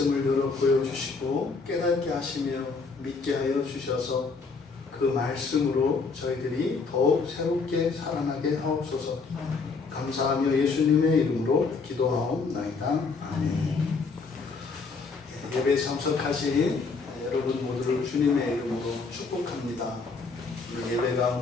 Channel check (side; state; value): right; quieter; 4.5 dB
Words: 열어 보여주시고 깨닫게 하시며 믿게 하여 주셔서 그 말씀으로 저희들이 더욱 새롭게 살아나게 하옵소서. 감사하며 예수님의 이름으로 기도하옵나이다. 아멘. 예배에 참석하신 여러분 모두를 주님의 이름으로 축복합니다. 예배